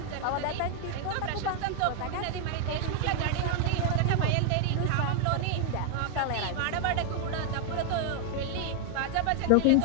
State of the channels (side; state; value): both; different; correlation 0.00